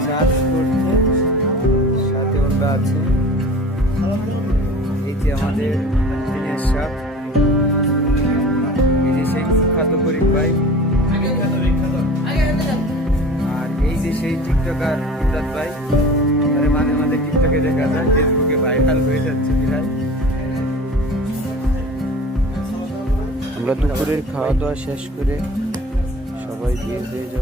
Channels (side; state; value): both; normal; correlation 0.40